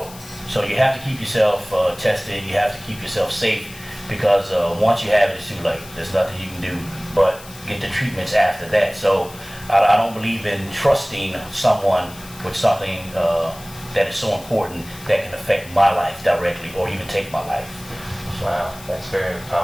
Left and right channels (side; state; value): left; noise; hiss, 18 dB below the sound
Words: So you have to keep yourself tested, you have to keep yourself safe, because once you have it, it's too late. There's nothing you can do but get the treatments after that. So I don't believe in trusting someone with something that is so important that can affect my life directly or even take my life. Wow, that's a very